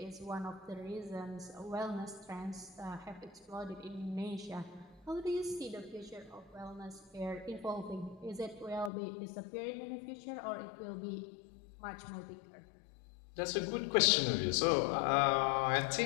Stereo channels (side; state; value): right; drops out; at 8.9 s